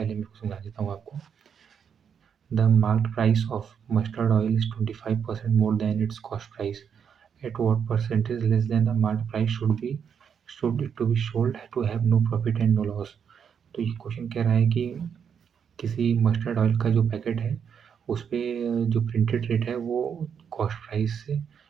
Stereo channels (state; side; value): quieter; left; 7.4 dB